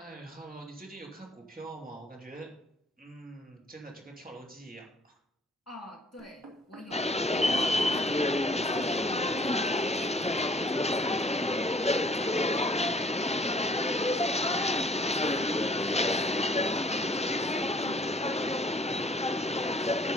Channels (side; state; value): both; normal; correlation 0.56